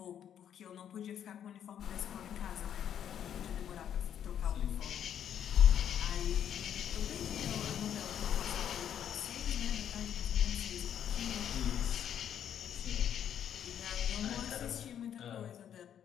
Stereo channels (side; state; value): right; quieter; 9.4 dB